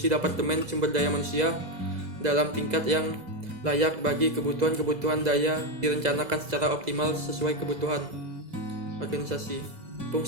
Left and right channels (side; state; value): left; late; 2.0 ms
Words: departemen sumber daya manusia dalam tingkat yang layak bagi kebutuhan daya direncanakan secara optimal sesuai kebutuhan organisasi.